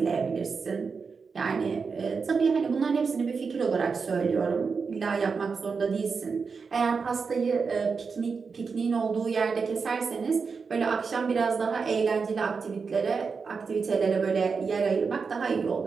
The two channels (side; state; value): left; quieter; 5.2 dB